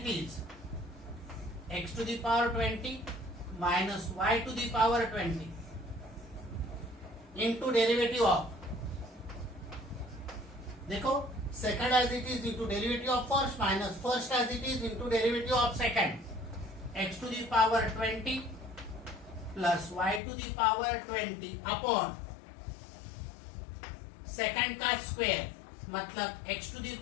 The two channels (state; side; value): drops out; right; at 20.2 s